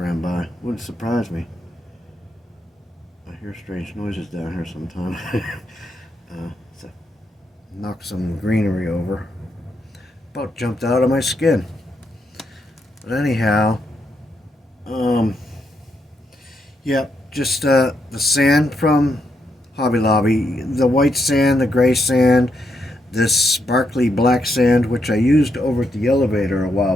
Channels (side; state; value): both; normal; correlation 0.80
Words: by. Wouldn't surprise me. I hear strange noises down here sometimes. So knock some greenery over. About jumped out of my skin. But anyhow, yeah, just the sand from Hobby Lobby, the white sand, the gray sand, this sparkly black sand, which I used over at the elevator a while